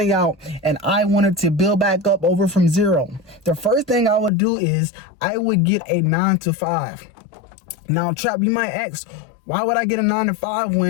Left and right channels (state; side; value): drops out; right; at 4.3 s